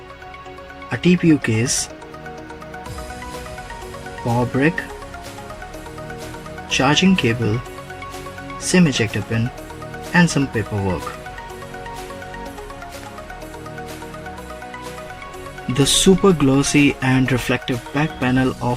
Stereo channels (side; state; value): both; identical; correlation 1.00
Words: a TPU case, power brick, charging cable, SIM ejector pin and some paperwork. The super glossy and reflective back panel